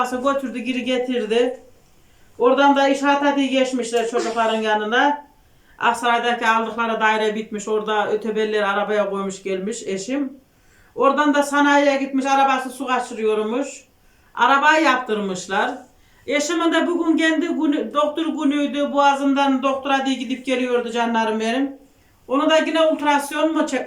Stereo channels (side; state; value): both; identical; correlation 1.00